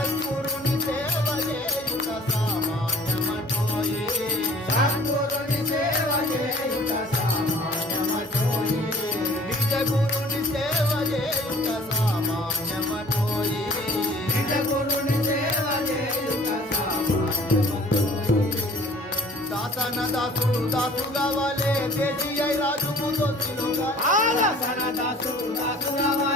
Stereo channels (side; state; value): both; normal; correlation 0.50